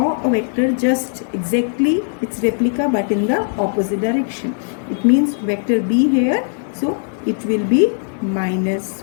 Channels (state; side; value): silent; right; digital silence